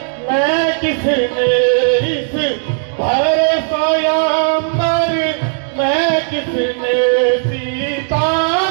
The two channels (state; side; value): silent; left; digital silence